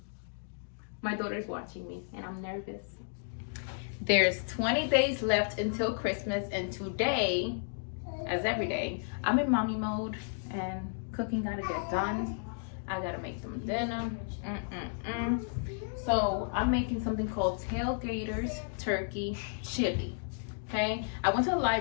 my daughter's watching me and I'm nervous. There's 20 days left until Christmas, and today, as every day, I'm in mommy mode and cooking gotta get done. I gotta make them dinner. So I'm making something called Tailgaters Turkey Chili. Okay, I went to the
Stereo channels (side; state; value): right; silent; digital silence